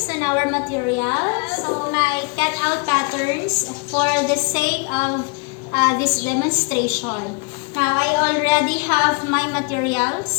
on our material. So my cutout patterns for the sake of this demonstration. Now I already have my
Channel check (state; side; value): quieter; right; 33.3 dB